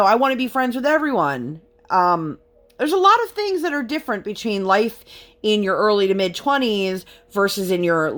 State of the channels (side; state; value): both; identical; correlation 1.00